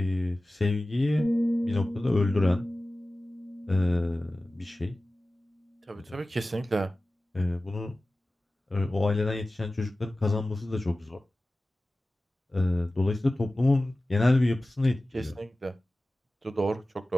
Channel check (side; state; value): both; normal; correlation 0.96